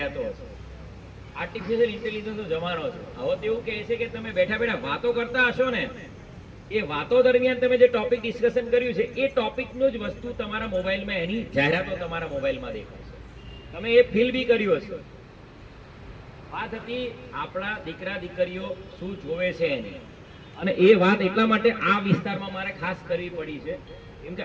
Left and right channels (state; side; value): identical; both; correlation 1.00